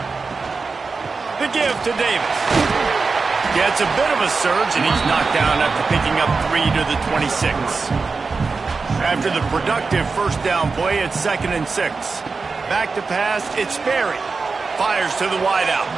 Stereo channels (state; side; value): quieter; left; 4.4 dB